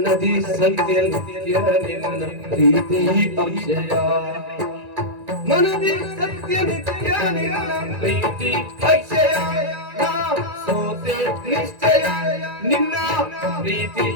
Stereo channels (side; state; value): left; late; 1.9 ms